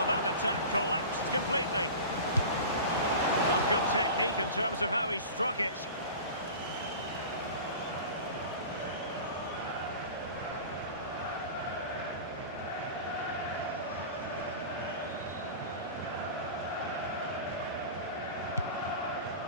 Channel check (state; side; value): inverted; both; correlation -0.35